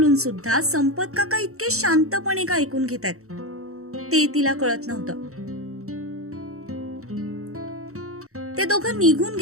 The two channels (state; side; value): late; left; 0.64 ms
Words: सुद्धा संपत काका इतके शांतपणे का ऐकून घेत आहेत ते तिला कळत नव्हतं. ते दोघं निघून